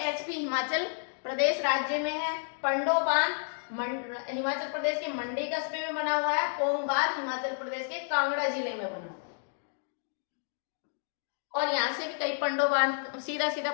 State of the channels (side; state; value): right; silent; digital silence